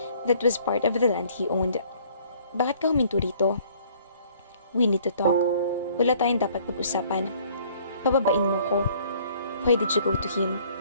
that was part of the land he owned. Bakit ka huminto rito? We need to talk. Wala tayong dapat pag-usapan. Pababain mo ko. Why did you go to him?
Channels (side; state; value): both; inverted; correlation -0.58